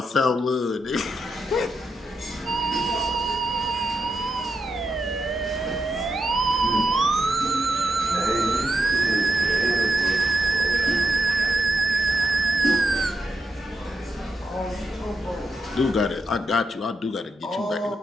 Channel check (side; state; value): both; normal; correlation 0.84